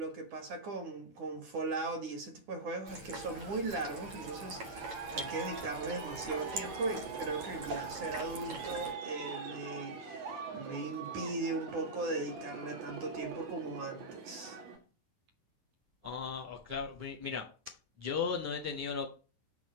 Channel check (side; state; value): left; late; 9.8 ms